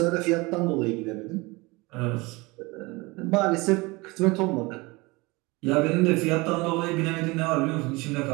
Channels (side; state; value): left; quieter; 24.3 dB